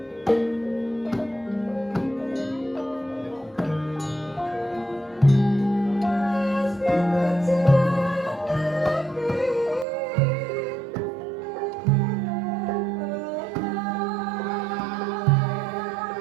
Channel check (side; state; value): left; drops out; at 9.9 s